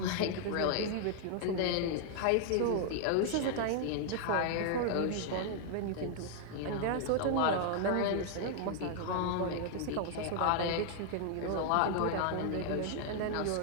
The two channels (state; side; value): different; both; correlation 0.00